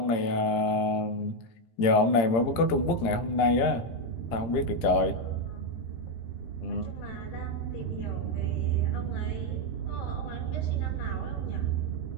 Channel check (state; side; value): late; right; 18 ms